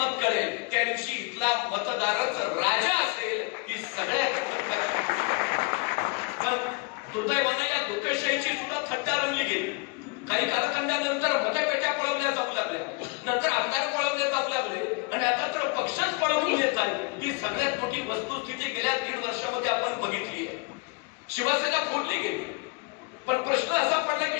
कळेल त्या दिवशी इथला मतदारच राजा असेल. ही सगळ्यात पण दुर्दैवानं या लोकशाहीची सुद्धा थट्टा रंगली गेली. काही कालखंडानंतर मतपेट्या पळवल्या जाऊ लागल्या, नंतर आमदार पळवले जाऊ लागले, आणि आता तर पक्षच पळवून येत आहे. ही सगळ्यात मोठी वस्तुस्थिती गेल्या 1.5 वर्षामध्ये आपण बघितली आहे. शिवसेना फोडली गेली, पण प्रश्न असा पडला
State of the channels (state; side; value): quieter; right; 29.5 dB